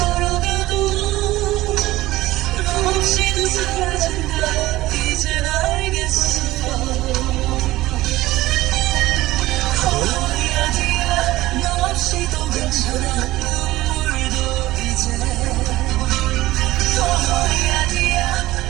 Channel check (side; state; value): left; quieter; 17.2 dB